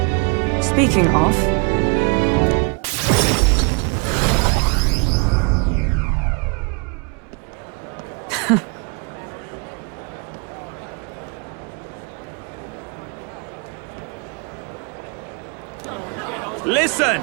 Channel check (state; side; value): quieter; left; 33.6 dB